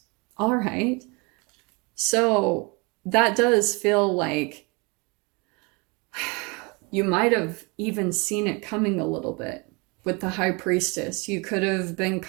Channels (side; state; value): left; quieter; 29.3 dB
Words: All right. So that does feel like you might have even seen it coming a little bit with the High Priestess. You could have been